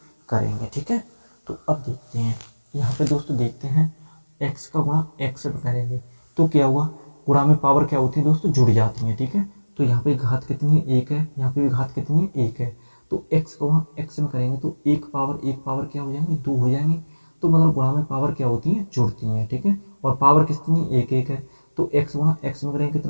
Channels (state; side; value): inverted; both; correlation -1.00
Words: करेंगे, ठीक है। तो अब देखते हैं, यहाँ पे दोस्तों देखते हैं x का गुणा x में करेंगे तो क्या हुआ, गुणा में पावर क्या होती है दोस्तों, जुड़ जाती है, ठीक है। तो यहाँ पे घात कितनी है, 1 है। यहाँ पे भी घात कितनी है, 1 है। तो x का गुणा x में करेंगे तो एक पावर क्या हो जाएंगे, 2 हो जाएंगे। तो मतलब गुणा में पावर क्या होती है, जुड़ती हैं, ठीक है। और पावर कितनी, 1 है। तो x गुणा x में करेंगे